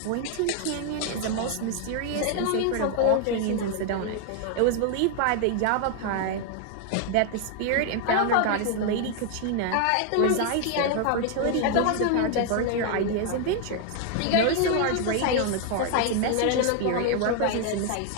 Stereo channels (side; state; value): both; different; correlation 0.00